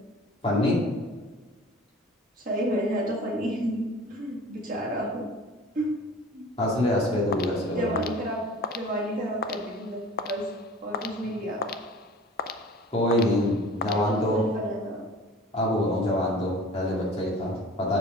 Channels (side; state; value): both; normal; correlation 0.43